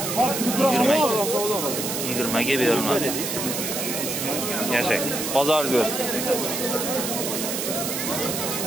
20 ga berilmadi. Yashang. Bozoringiz bo'lsin.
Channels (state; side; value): noise; right; hiss, 3 dB below the sound